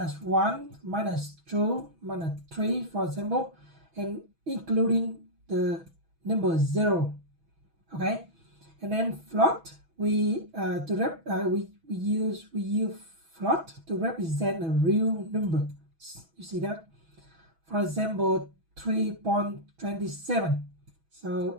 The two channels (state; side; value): late; left; 6.1 ms